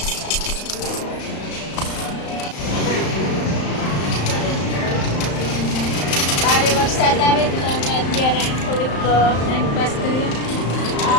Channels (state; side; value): late; right; 35 ms